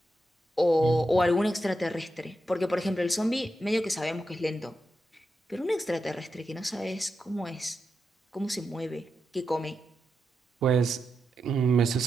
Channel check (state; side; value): normal; both; correlation 0.87